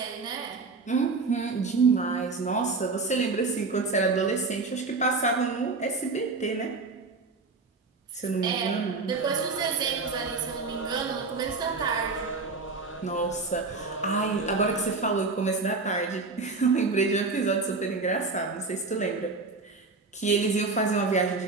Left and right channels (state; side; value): quieter; left; 4.0 dB